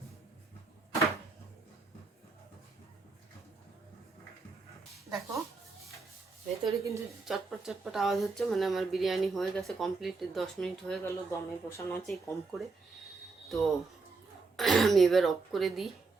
দেখো ভেতরে কিন্তু চটপট চটপট আওয়াজ হচ্ছে, মানে আমার বিরিয়ানি হয়ে গেছে কমপ্লিট। 10 মিনিট হয়ে গেল, দমে বসানো আছে কম করে। তো আমি এবার অফ করে দিই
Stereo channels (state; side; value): quieter; left; 4.1 dB